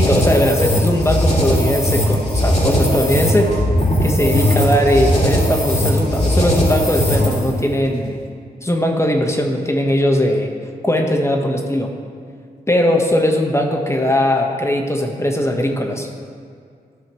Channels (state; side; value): normal; both; correlation 0.77